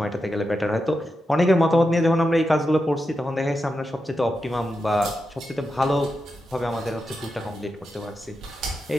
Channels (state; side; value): normal; both; correlation 0.88